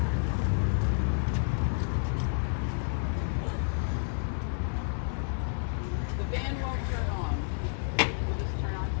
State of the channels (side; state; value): right; silent; 58 dB below the other